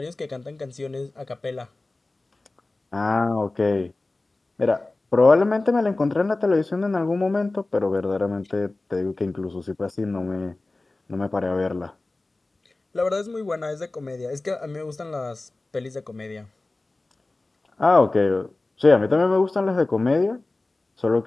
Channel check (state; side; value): quieter; right; 3.1 dB